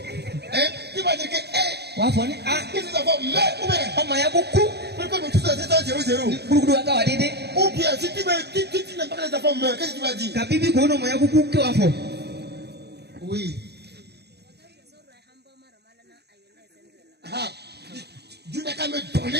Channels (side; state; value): left; late; 0.48 ms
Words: Hein? Tu vas dire que, Wafoni ah, qu'est-ce que ça va mettre ou bien? on m'a beaucoup. Pourquoi nous tous c'est 0-0? Beaucoup à Kawadede. Ou bien, si tu n'aimes pas que les enfants meurent, qu'est-ce que tu vas dire? La Bible qu'on m'a beaucoup que Wafo. Oui. Ah, Dieu n'a qu'à me